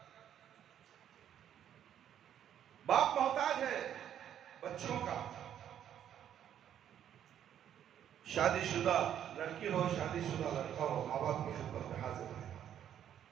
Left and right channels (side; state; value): left; quieter; 10.0 dB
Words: बाप मोहताज है बच्चों का, शादीशुदा लड़की हो शादीशुदा लड़का हो, माँ बाप की खिदमत में हाजिर है।